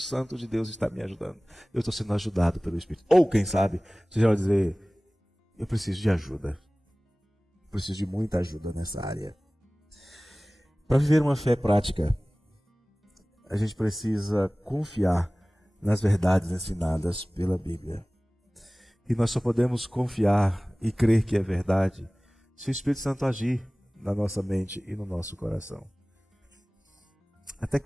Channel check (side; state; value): both; normal; correlation 0.98